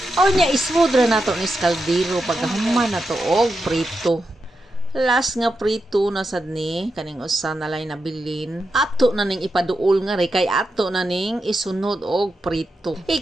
O nya ismudra nato ni kaldero pagkahuman nato og prito. Last nga prito na sad ni kaning usa na lay nabilin. Ato na ning ipaduol nga re kay ato na ning isunod og prito.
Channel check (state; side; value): normal; both; correlation 0.87